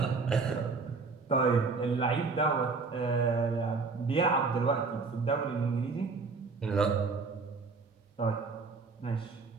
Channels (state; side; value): quieter; left; 4.4 dB